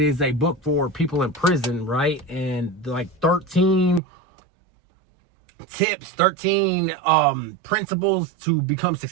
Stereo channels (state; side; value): drops out; left; at 4.0 s